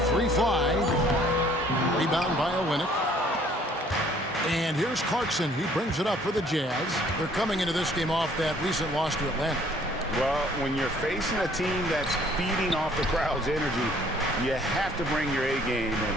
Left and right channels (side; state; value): both; normal; correlation 0.59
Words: 3 fly. Rebound by Olynyk. And here's Clarkson. He brings it up for the Jazz. They're coming into this game off that recent loss to Atlanta. Well, when you're facing a team that's feeding off the crowd's energy, you have to bring your A game, and